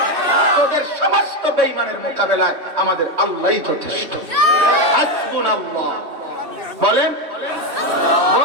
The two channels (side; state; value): left; late; 3.1 ms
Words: তোদের সমস্ত বেঈমানের মোকাবেলায় আমাদের আল্লাহই যথেষ্ট। হাসবুনাল্লাহ বলেন,